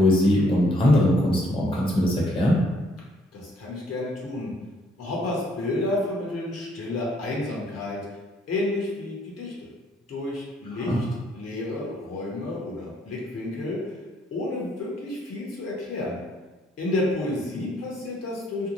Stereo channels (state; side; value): normal; both; correlation 0.67